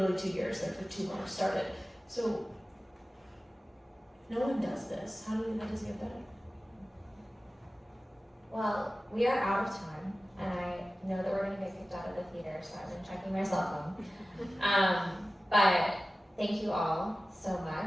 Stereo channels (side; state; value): both; normal; correlation 0.96